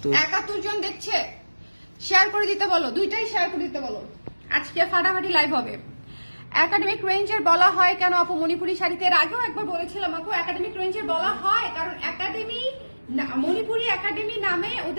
জন দেখছে, শেয়ার করে দিতে বলো, দুইটাই শেয়ার করে দিতে বলো। আজকে ফাটাফাটি লাইভ হবে। একাডেমিক রেঞ্জের বলা হয় কেন আপু মণিপুরি শাড়িতে? এর আগেও একবার বলেছিলাম আপু, একাডেমিক রেঞ্জের বলা হয় কারণ একাডেমি মণিপুরি একাডেমি নামে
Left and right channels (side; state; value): both; inverted; correlation -1.00